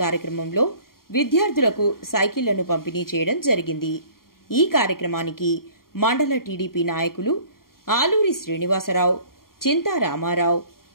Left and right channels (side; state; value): right; late; 0.92 ms